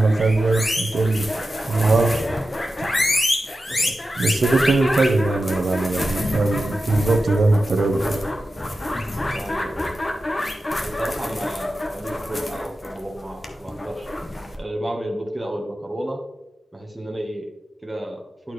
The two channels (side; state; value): both; normal; correlation 0.92